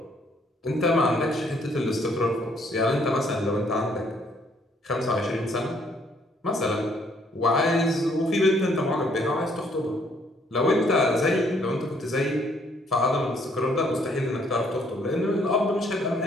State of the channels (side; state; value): both; normal; correlation 0.66